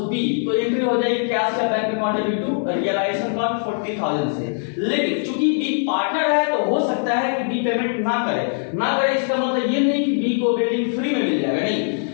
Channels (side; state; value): right; silent; digital silence